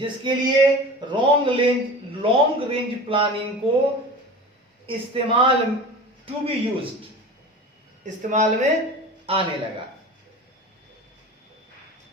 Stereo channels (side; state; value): both; normal; correlation 0.35